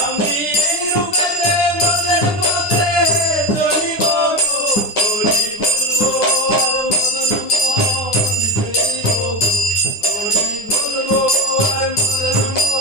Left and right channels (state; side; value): late; right; 9.8 ms